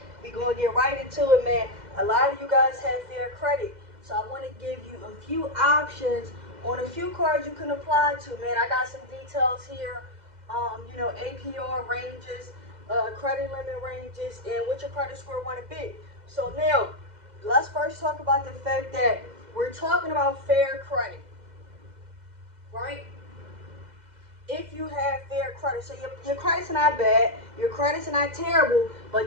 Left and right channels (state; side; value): late; left; 2.0 ms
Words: Man. A lot of you guys have fair credit, so I want to give you a few options on a few cards you can apply to, man. I got some details here. APR ranges, credit limit ranges, and what your credit score want to be. So now, let's first talk about the fact that we're talking about fair credit, right? If you have fair credit. So your credit's not bad, your credit's not terrible,